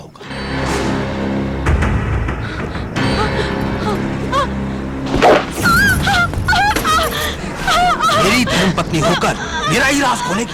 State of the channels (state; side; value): identical; both; correlation 1.00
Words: मेरी धर्मपत्नी होकर मेरा ही राज